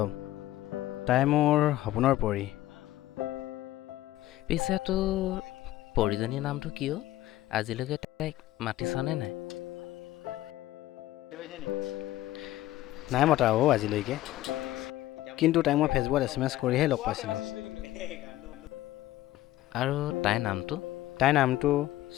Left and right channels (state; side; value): quieter; right; 15.3 dB